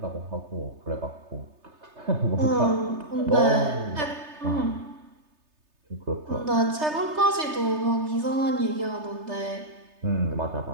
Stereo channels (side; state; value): left; late; 3.3 ms